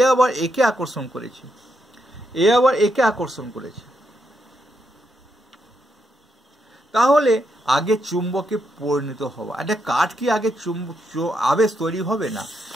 আবার একে আকর্ষণ করেছে, এ আবার একে আকর্ষণ করেছে। তাহলে আগে চুম্বকে পরিণত হওয়া, একটা কাঠ কি আগে আবেশ তৈরি হবে না?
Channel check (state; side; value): normal; both; correlation 0.81